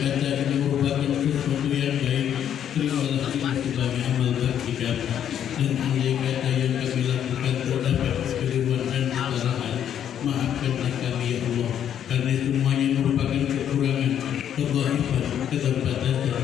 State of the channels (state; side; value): quieter; right; 9.6 dB